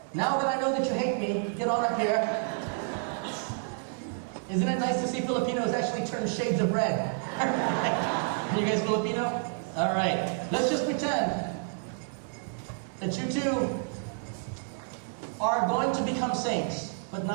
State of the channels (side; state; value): left; silent; 58 dB below the other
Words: Now that I know that you hate me, get on up here. Isn't it nice to see Filipinos actually turn shades of red? Are you guys Filipino? All right. Let's just pretend that you two are going to become saints, but